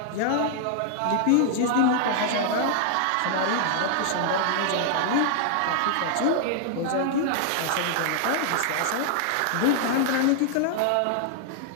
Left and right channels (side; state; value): both; different; correlation 0.00